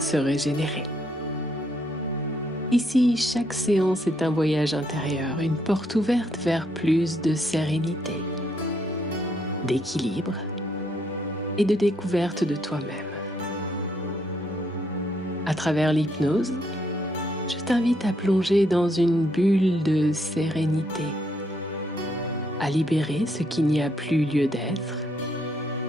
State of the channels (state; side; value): normal; both; correlation 0.73